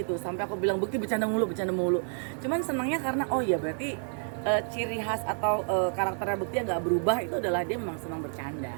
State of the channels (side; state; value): left; silent; 58 dB below the other